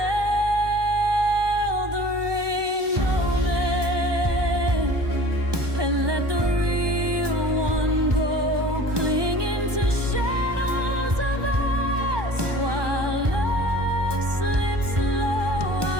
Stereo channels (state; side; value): late; left; 1.2 ms